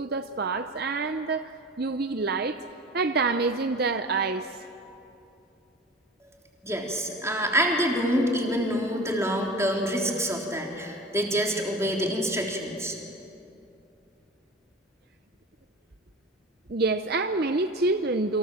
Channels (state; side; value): normal; both; correlation 0.36